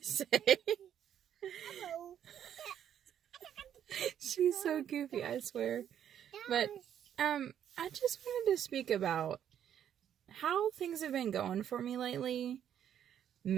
say. She's so goofy, I swear. But I just wanted to speak about how things have been going for me lately,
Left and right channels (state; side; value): quieter; left; 9.8 dB